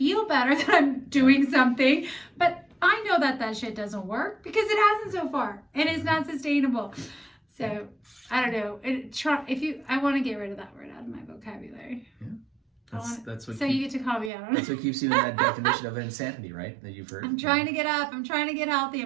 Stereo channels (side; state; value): left; drops out; at 14.3 s